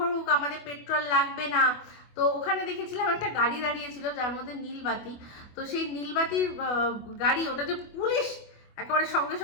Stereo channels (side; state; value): right; late; 24 ms